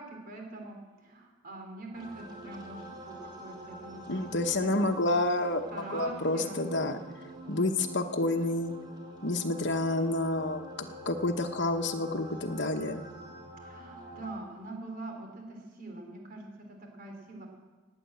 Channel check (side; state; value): both; normal; correlation 0.08